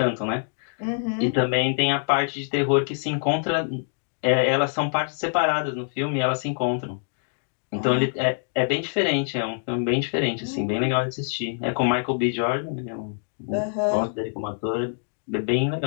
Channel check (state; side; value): silent; right; digital silence